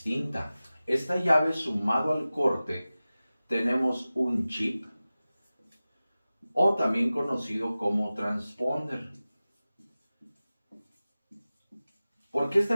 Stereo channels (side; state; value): both; inverted; correlation -0.96